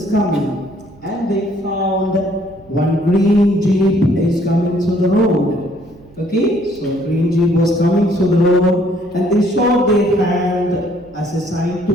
coming, and they found one green jeep is coming through the road. Okay, so green jeep was coming through the road, and they showed their hand as a sign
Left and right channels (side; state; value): right; noise; hum, 26 dB below the sound